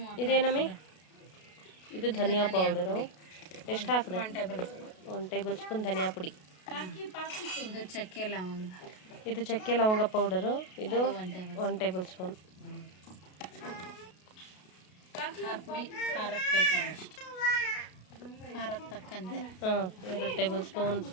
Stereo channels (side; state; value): right; late; 33 ms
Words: ಇದೇನಮ್ಮಿ? ಇದು ಧನಿಯಾ ಪೌಡರು. ಎಷ್ಟು ಹಾಕಿದೆ? 1 ಟೇಬಲ್ ಸ್ಪೂನ್ ಧನಿಯಾ ಪುಡಿ. ಇದು ಚಕ್ಕೆ ಲವಂಗ. ಇದು ಚಕ್ಕೆ ಲವಂಗ ಪೌಡರು. ಇದು 1 ಟೇಬಲ್ ಸ್ಪೂನ್. ಪುಡಿ ಖಾರಕ್ಕೆ ಬೇಕಾದಷ್ಟು, ಖಾರಕ್ಕೆ ತಕ್ಕಂತೆ. 2 ಟೇಬಲ್ ಸ್ಪೂನ್,